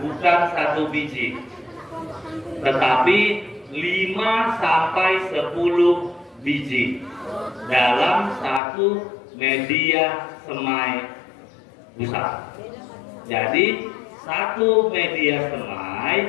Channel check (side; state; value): right; drops out; at 8.6 s